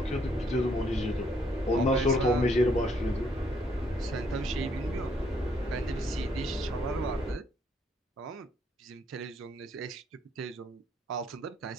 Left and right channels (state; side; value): normal; both; correlation 0.69